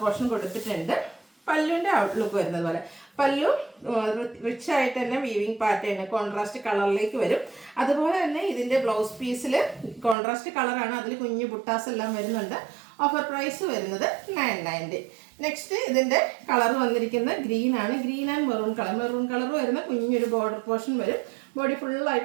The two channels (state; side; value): drops out; left; at 10.2 s